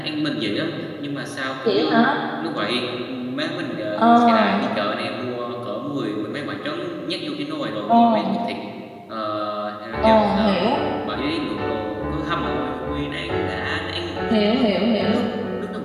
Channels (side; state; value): both; identical; correlation 1.00